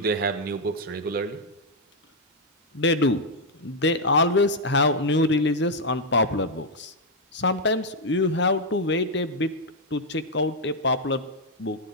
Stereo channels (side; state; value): both; normal; correlation -0.01